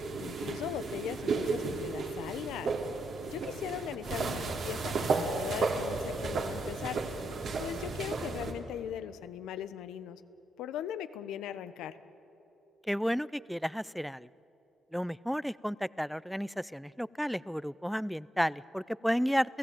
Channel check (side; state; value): both; normal; correlation 0.81